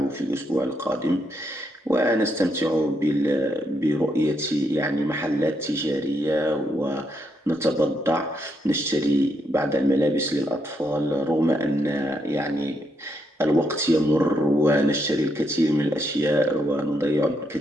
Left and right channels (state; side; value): normal; both; correlation 0.78